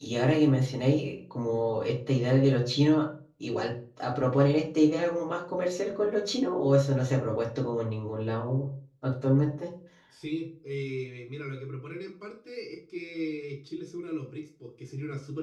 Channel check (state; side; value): identical; both; correlation 1.00